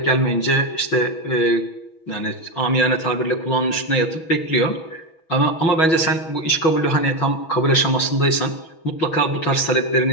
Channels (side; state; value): right; late; 6.2 ms